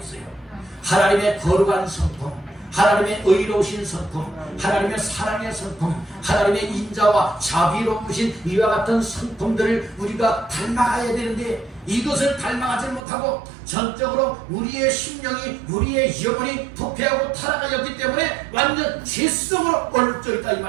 하나님의 거룩한 성품, 하나님의 의로우신 성품, 하나님의 사랑의 성품, 하나님의 인자와 자비로우신 이와 같은 성품들을 우리가 닮아가야 되는데 이것을 닮아가지 못하고 전적으로 우리의 심령이 우리의 영혼이 부패하고 타락하였기 때문에 완전 죄성으로 얼룩져 있다 이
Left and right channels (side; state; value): left; drops out; at 13.0 s